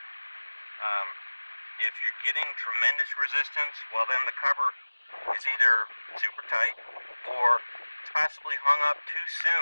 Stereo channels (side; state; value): both; inverted; correlation -1.00